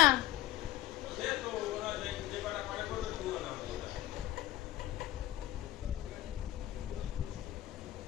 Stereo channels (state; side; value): quieter; right; 15.0 dB